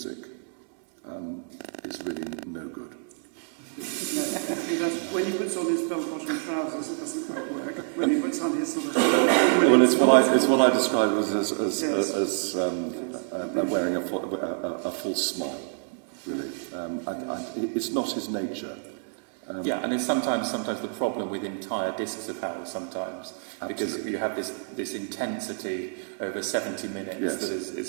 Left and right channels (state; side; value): silent; left; digital silence